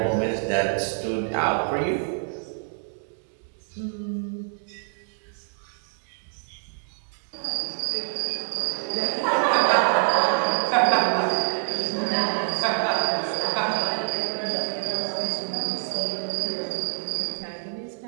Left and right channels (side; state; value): left; silent; digital silence